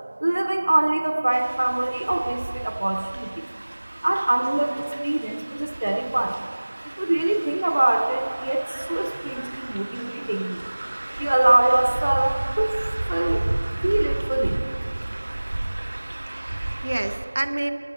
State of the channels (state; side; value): inverted; both; correlation -1.00